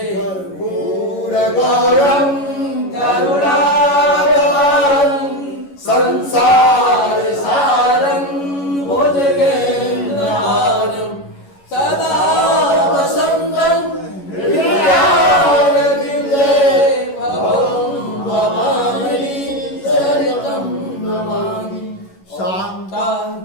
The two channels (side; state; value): right; late; 11 ms